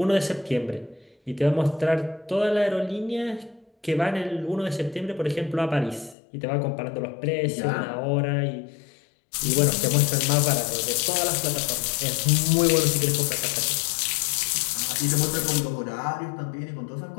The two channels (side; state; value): right; drops out; at 6.2 s